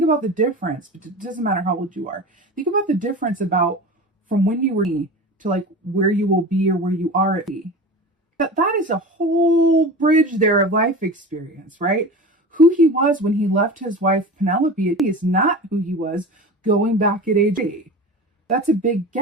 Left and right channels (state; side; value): normal; both; correlation 0.32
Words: about the difference. It doesn't matter how old you are. Think about the difference about from when you were to like where you will be or where you are at be. That is a whole bridge there of life experience, right? Who he was when he left his wife Penelope is not who he was going back at age 8. That's a big